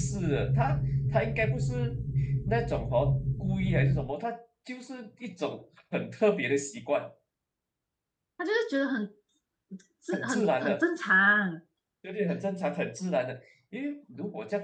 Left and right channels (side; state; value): both; identical; correlation 1.00